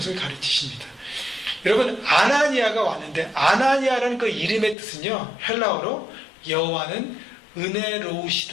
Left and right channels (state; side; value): drops out; right; at 4.8 s